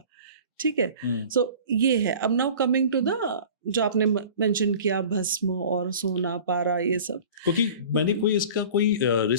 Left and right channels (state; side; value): inverted; both; correlation -0.42